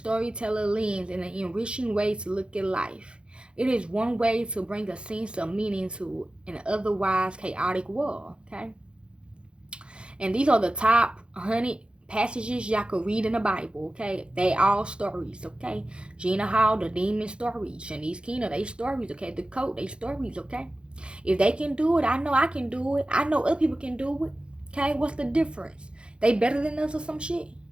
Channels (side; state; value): left; late; 0.055 ms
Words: lens in an enriching way to look at life. It is one way to bring a sense of meaning to an otherwise chaotic world, okay? And these are the top 100 passages y'all could read in the Bible, okay? They all stories, okay? Gina Hall, the demon stories. Shanice Keena, they stories, okay? The Coat, they stories, okay? If they can do it, I know I can do it. I know other people can do it, okay? What's the difference? They better than us or some shit?